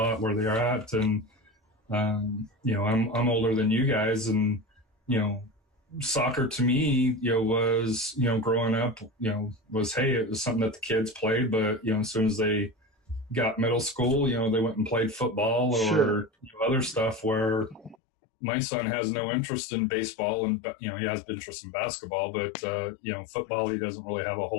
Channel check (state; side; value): drops out; right; at 17.9 s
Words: where they are at, and I'm older than you guys, and soccer to me was growing up was, hey, it was something that the kids played, but as soon as they got middle school, they went and played football or other stuff, where my son has no interest in baseball, and he has interest in basketball, but football, he doesn't really have a